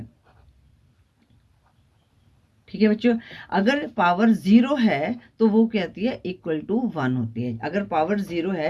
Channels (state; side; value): identical; both; correlation 1.00